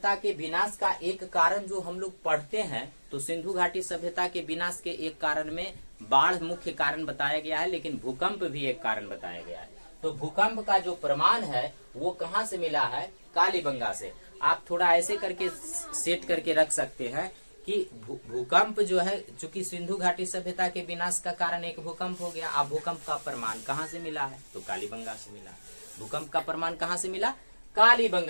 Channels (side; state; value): both; inverted; correlation -1.00